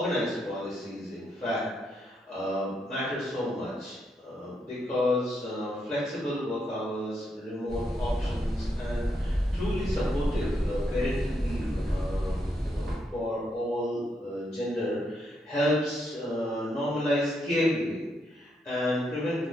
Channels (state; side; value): normal; both; correlation 0.79